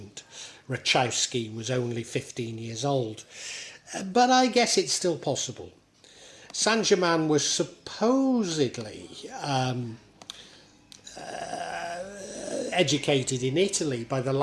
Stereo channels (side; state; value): both; identical; correlation 1.00